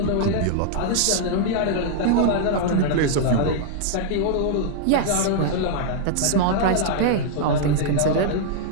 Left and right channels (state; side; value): different; both; correlation -0.01